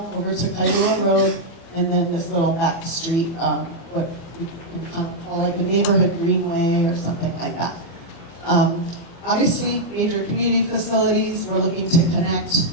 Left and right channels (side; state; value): right; late; 24 ms